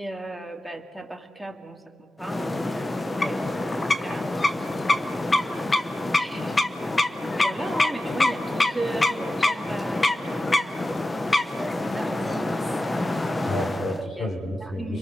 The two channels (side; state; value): both; normal; correlation 0.93